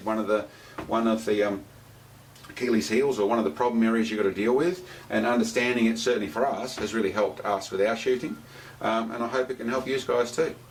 one of the Achilles heels, or one of the problem areas you've got to deal with, and understanding it, certainly for us, has really helped us with our shooting, and I hope it can help you guys too.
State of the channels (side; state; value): both; identical; correlation 1.00